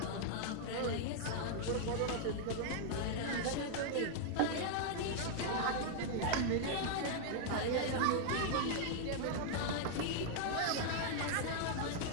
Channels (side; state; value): both; different; correlation -0.01